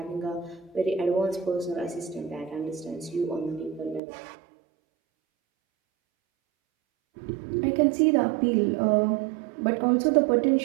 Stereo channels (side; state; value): left; drops out; at 4.0 s